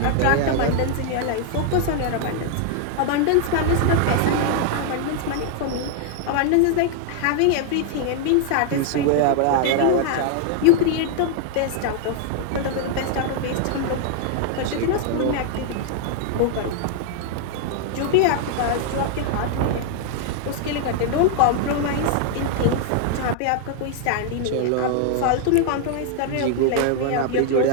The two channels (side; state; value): both; different; correlation 0.00